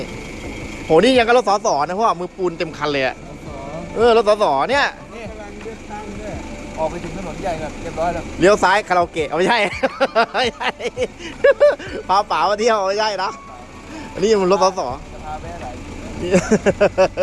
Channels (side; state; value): both; identical; correlation 1.00